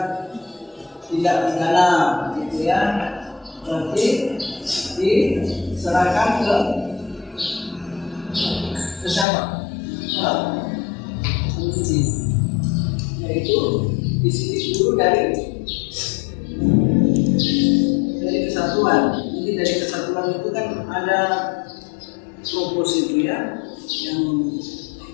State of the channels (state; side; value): drops out; right; at 9.2 s